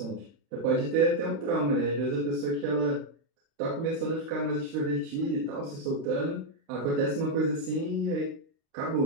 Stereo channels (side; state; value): left; late; 35 ms